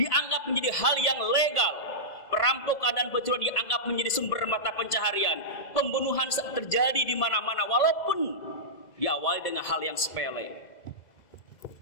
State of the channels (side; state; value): right; late; 2.0 ms